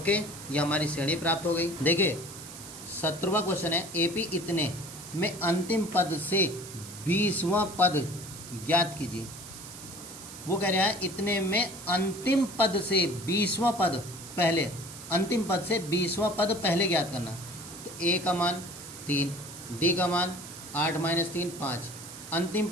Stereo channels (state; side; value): noise; right; hiss, 13 dB below the sound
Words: ये हमारी श्रेणी प्राप्त हो गई। देखिए 17वां क्वेश्चन है, एपी इतने में अंतिम पद से 20वां पद ज्ञात कीजिए। वो कह रहा है इतने में अंतिम पद से 20वां पद पहले, अंतिम पद से 20वां पद पहले ज्ञात करना। तो ए का मान 3, डी का मान 8 - 3 5, अंतिम